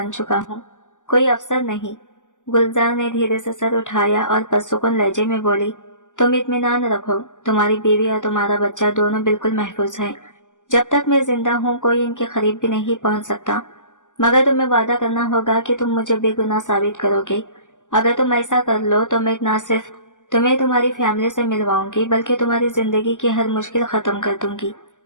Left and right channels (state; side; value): late; right; 0.87 ms